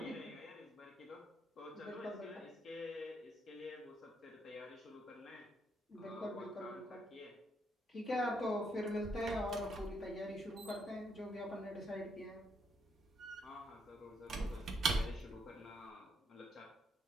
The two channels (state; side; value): normal; both; correlation 0.75